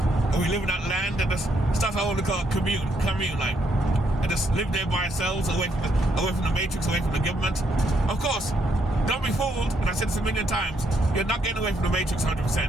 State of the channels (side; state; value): both; normal; correlation 0.74